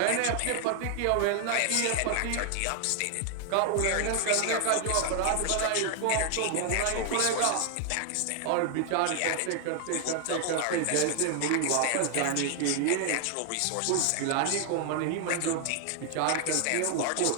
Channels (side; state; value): both; different; correlation 0.00